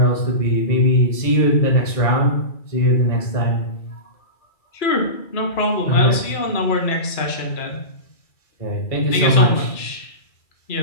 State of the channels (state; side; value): late; right; 2.3 ms